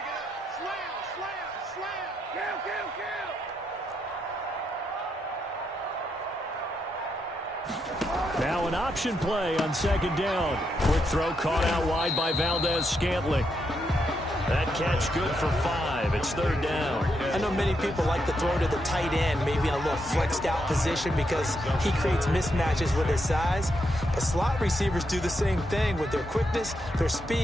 Now an option play on 2nd down. Quick throw caught out wide by Valdez-Scantling. That catch good for 5. It's 3rd down. I know many people like to throw to the tight end, maybe in a little flexed out position because he creates mismatches with his size. But slot receivers do the same thing with their quickness, their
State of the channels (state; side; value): normal; both; correlation 0.81